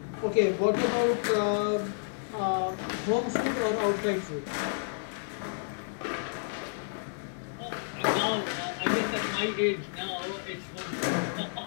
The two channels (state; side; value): silent; right; digital silence